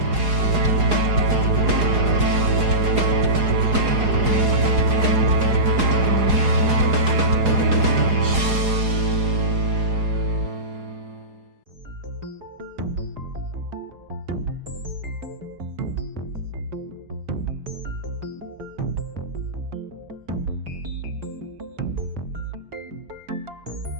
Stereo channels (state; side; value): late; left; 4.8 ms